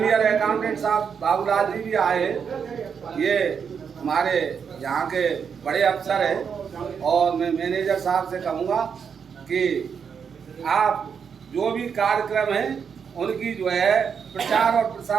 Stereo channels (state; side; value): quieter; left; 6.8 dB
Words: अकाउंटेंट साहब बाबूलाल जी भी आए, ये हमारे यहाँ के बड़े अफसर हैं, और मैं मैनेजर साहब से कहूँगा कि आप जो भी कार्यक्रम हैं उनकी जो है प्रचार और